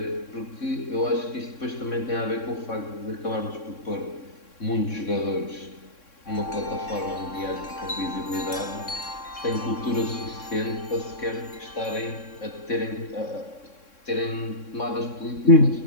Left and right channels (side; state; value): right; late; 3.6 ms